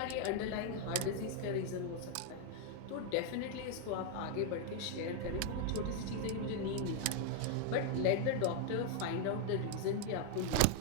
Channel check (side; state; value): both; different; correlation 0.00